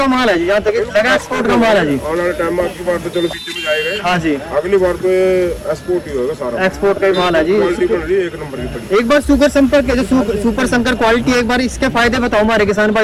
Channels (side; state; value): both; identical; correlation 1.00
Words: माल है जी, यहाँ तक लगा एक्सपोर्ट का माल है जी। आने वाले टाइम में आपकी बार तो चलो पीछे में जाएगा, हाँ जी, अगली बार तो ये एक्सपोर्ट ही होगा सारा। एक्सपोर्ट का ही माल है जी। क्वालिटी बन रही है, 1 नंबर की पड़ी। एक बार सुपर संपर्क के जो सुपर शंकर क्वालिटी है, एक बार इसके फायदे बताओ हमारे किसान